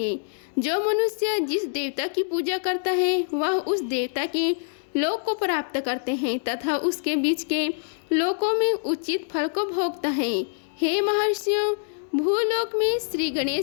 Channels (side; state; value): right; silent; digital silence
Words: जो मनुष्य जिस देवता की पूजा करता है वह उस देवता के लोक को प्राप्त करते हैं तथा उसके बीच के लोकों में उचित फल को भोगता है। हे महर्षियों, भूलोक में श्री